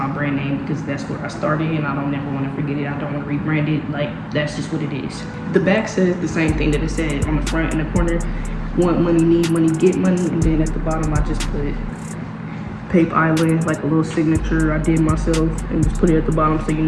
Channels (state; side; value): identical; both; correlation 1.00